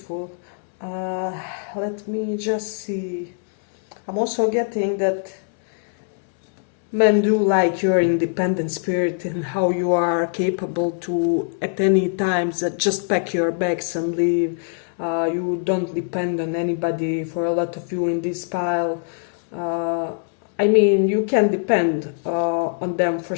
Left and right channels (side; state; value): right; silent; 64 dB below the other